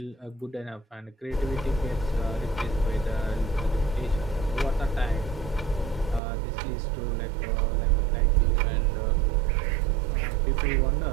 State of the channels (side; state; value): left; drops out; at 6.2 s